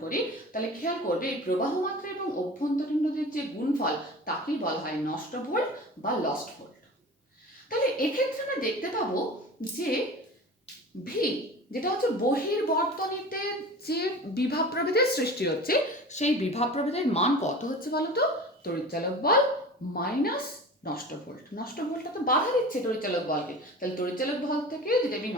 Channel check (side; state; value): both; normal; correlation 0.36